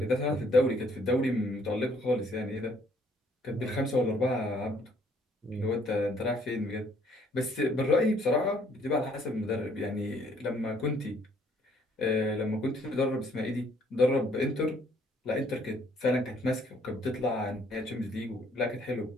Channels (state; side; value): normal; both; correlation 0.64